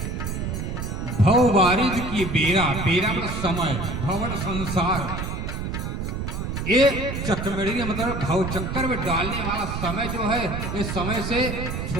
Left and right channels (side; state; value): right; noise; rumble, 4 dB below the sound